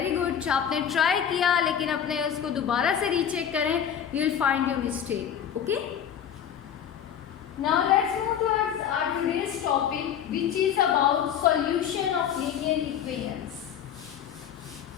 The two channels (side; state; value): right; quieter; 8.8 dB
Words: गुड, आपने ट्राई किया लेकिन अपने उसको दोबारा से रीचेक करें, you will find your mistake. Okay, now let's move towards our today's topic which is about solution of linear equations.